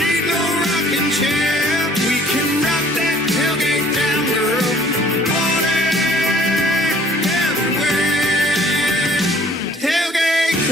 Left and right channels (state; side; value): normal; both; correlation 0.56